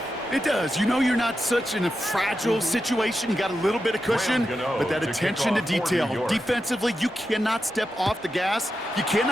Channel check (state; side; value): normal; both; correlation 0.89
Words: It does. You know you're not such in a fragile situation. You got a little bit of cushion, but that attention to detail. Defensively, you cannot step off the gas. You